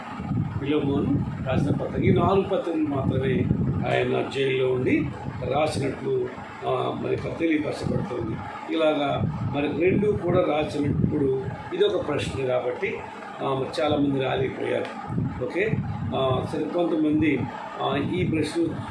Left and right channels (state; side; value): identical; both; correlation 1.00